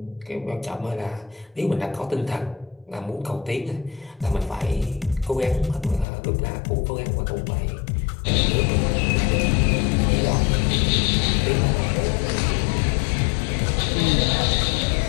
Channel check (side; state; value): right; drops out; at 6.1 s